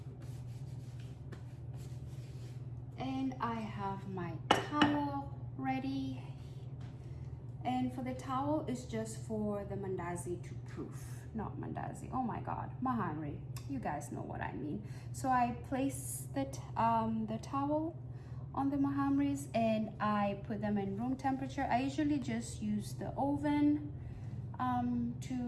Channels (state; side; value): identical; both; correlation 1.00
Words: And I have my towel ready. And for the towel, it's just for the mandazi to proof, not mandazi. Oh my God, Mahamri, you guys know what I mean. So I place the towel on the Mahamris and I put them in room temperature. I usually just use the oven